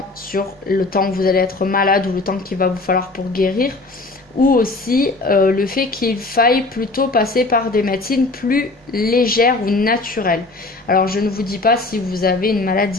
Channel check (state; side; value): quieter; right; 3.2 dB